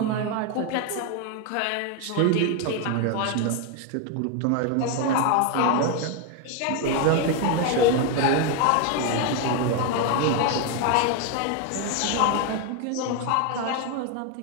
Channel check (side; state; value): both; different; correlation 0.01